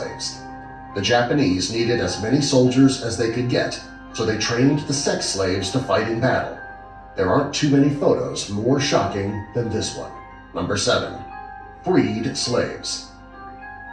The Japanese needed as many soldiers as they could get, so they trained the sex slaves to fight in battle. There aren't too many photos more shocking than this one. Number 7. Freed slaves.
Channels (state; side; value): identical; both; correlation 1.00